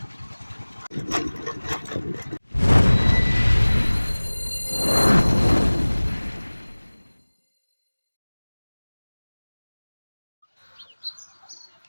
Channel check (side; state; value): both; inverted; correlation -1.00